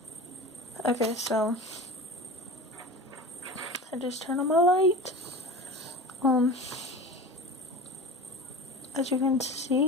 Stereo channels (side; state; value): both; normal; correlation 0.34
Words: Okay, so I just turn on my light. As you can